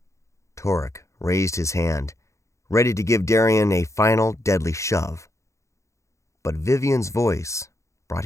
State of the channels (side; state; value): right; late; 0.14 ms